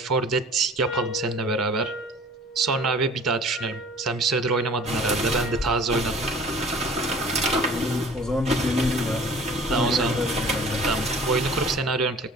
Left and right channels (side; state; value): both; normal; correlation 0.47